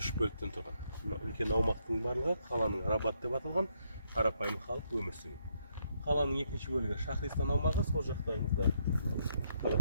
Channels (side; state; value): both; inverted; correlation -0.75